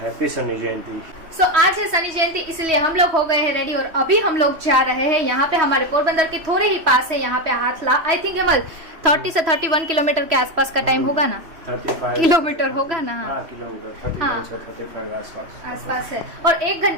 हैप्पी शनि जयंती। सो आज है शनि जयंती, इसलिए हम लोग हो गए हैं रेडी और अभी हम लोग जा रहे हैं यहाँ पे, हमारे पोरबंदर के थोड़े ही पास है, यहाँ पे हाथला। आई थिंक हेमल 30 से 31 किलोमीटर के आसपास का टाइम होगा ना, 35 किलोमीटर होगा ना। हाँ, किलोमीटर 31 से 35 आसपास है। और 1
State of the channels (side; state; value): left; late; 3.1 ms